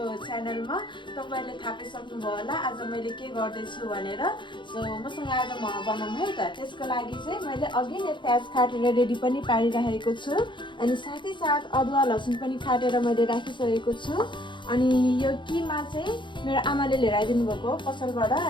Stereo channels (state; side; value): late; right; 0.23 ms